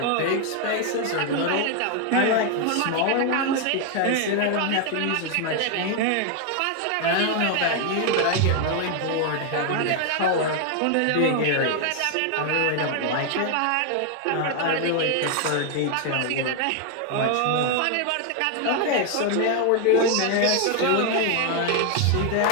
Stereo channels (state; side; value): different; both; correlation 0.01